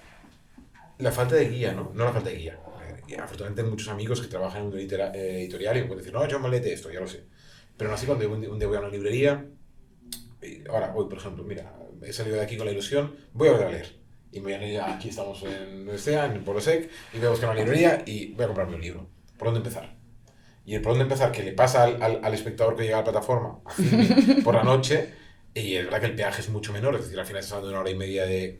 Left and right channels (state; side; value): identical; both; correlation 1.00